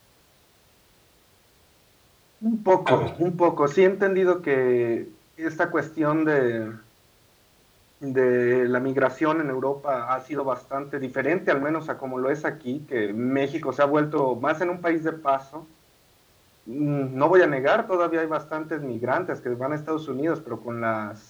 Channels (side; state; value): both; identical; correlation 1.00